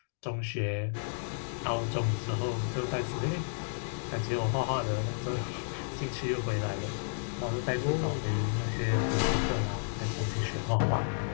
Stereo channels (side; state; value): right; silent; digital silence